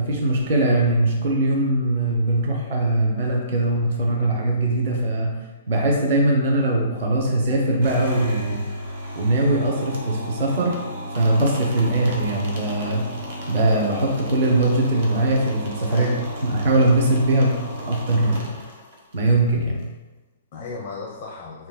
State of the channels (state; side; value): inverted; both; correlation -0.60